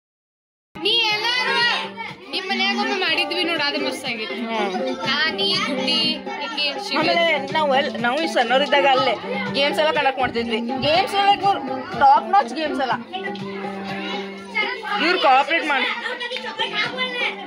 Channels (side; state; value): both; identical; correlation 1.00